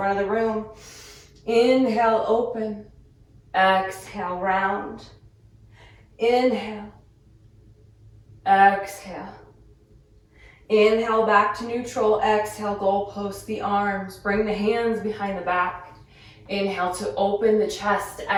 of the room. Inhale, open. Exhale, round. Inhale. Exhale. Inhale, back to neutral. Exhale, goalpost the arms. Bring the hands behind the back. Inhale to open the chest.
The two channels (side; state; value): both; identical; correlation 1.00